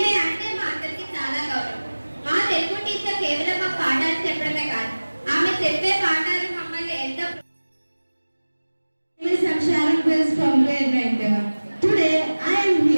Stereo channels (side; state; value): both; inverted; correlation -1.00